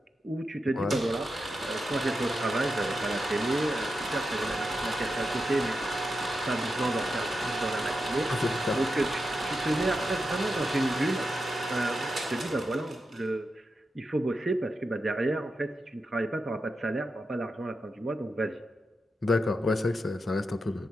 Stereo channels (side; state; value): both; normal; correlation 0.88